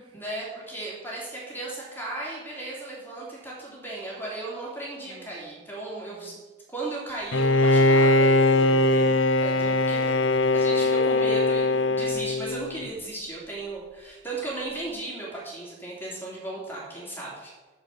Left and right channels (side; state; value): both; normal; correlation 0.10